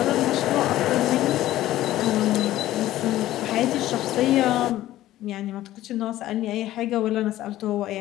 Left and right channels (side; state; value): right; quieter; 14.5 dB